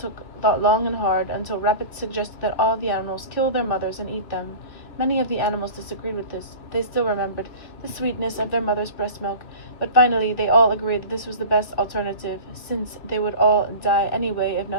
thought long and hard until Rabbit suggested that all the animals kill their mothers and eat them. Many of the animals disagreed with this. They still remembered the sweetness of their mother's breast milk, but finally they all agreed that this was the best alternative, since they would all die anyway if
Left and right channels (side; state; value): right; late; 2.9 ms